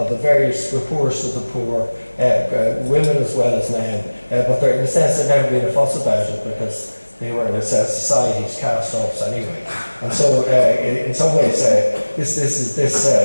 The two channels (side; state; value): both; inverted; correlation -1.00